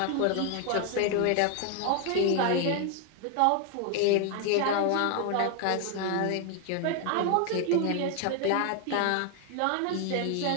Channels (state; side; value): different; both; correlation 0.00